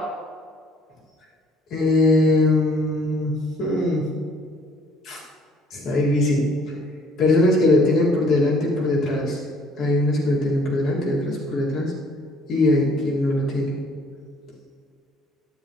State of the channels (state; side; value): normal; both; correlation 0.59